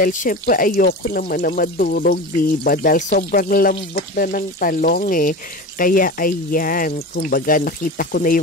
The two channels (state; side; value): normal; both; correlation 0.29